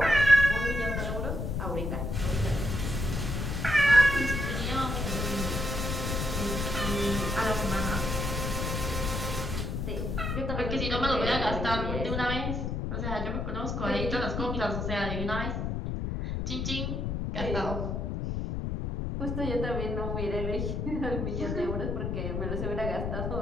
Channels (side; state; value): left; noise; rumble, 2 dB below the sound